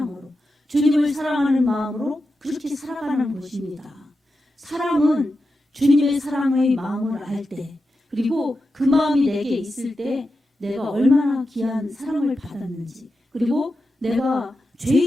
주님을 사랑하는 마음으로 그렇게 살아가는 것입니다. 사람은 주님의 사랑의 마음을 알 때 그리고 그 마음이 내게 있을 때 내가 얼마나 귀한 사랑을 받았는지 그리고 내가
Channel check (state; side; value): normal; both; correlation 0.90